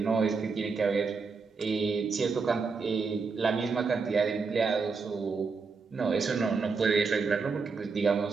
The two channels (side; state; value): left; quieter; 4.8 dB